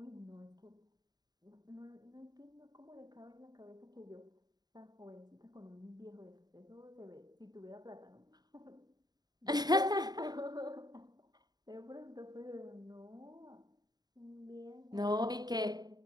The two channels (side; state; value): left; late; 0.20 ms